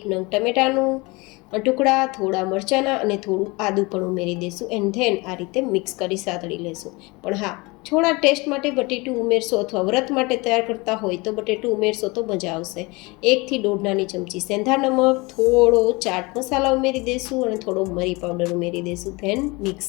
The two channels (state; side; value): quieter; right; 25.3 dB